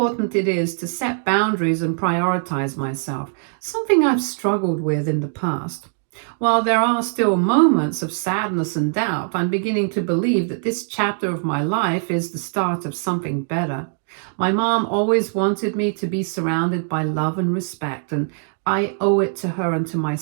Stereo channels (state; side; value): silent; left; 65 dB below the other